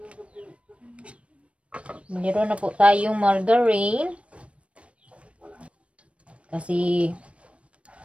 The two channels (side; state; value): left; late; 0.062 ms